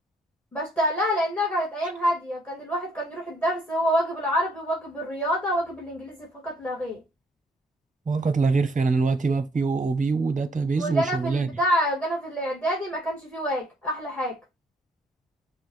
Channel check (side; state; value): both; normal; correlation 0.67